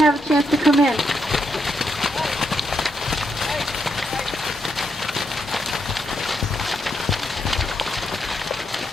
a chance to come in.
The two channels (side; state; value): both; normal; correlation 0.80